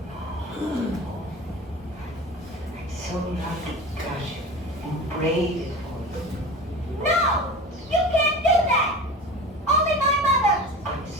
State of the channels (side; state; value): both; normal; correlation 0.33